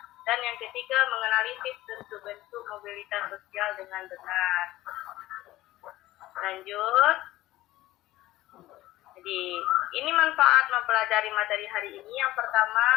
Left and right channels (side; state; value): right; quieter; 16.4 dB